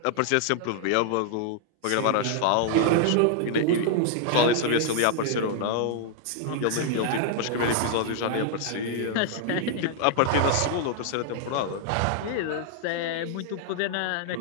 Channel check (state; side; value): different; both; correlation 0.00